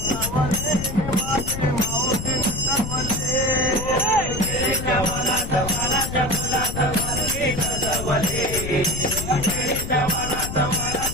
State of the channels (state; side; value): noise; left; rumble, 6 dB below the sound